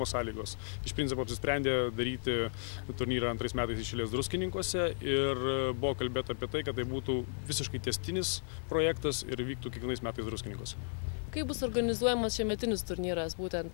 sąlygos. Iš principo apsisprendė daryti turnyrą 2 metais iš eilės Druskininkuose ir buvo kalbėta apie tai, kad tai būtų visiškai tęstinis projektas ir vyktų kiekvienais metais Druskininkuose. Kaip bus organizuojamas šiemetinis turnyras, būtent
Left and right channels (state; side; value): silent; right; digital silence